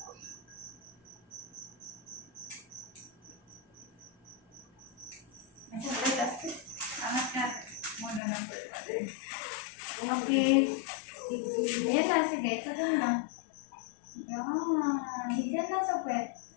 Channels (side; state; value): right; drops out; at 8.2 s